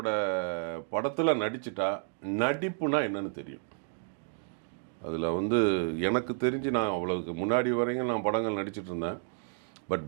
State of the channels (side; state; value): left; silent; 57 dB below the other